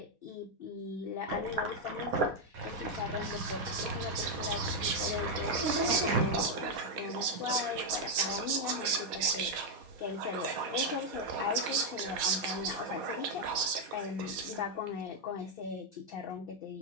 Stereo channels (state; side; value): late; left; 4.2 ms